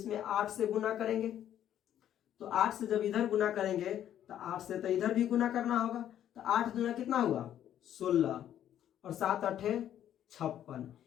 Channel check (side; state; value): right; quieter; 10.9 dB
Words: 8 से गुना करेंगे। तो 8 से जब इधर गुना करेंगे तो 8 से तो इधर भी गुना करना होगा, तो 8 दूना कितना हुआ 16 और 7 × 8 = 56,